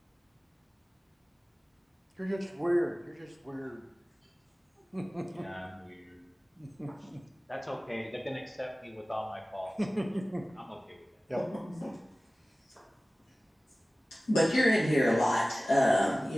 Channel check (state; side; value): normal; both; correlation 0.97